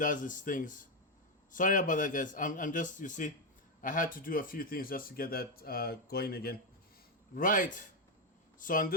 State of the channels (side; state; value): both; normal; correlation 0.06